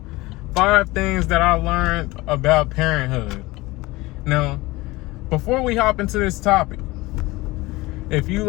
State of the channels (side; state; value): right; quieter; 20.8 dB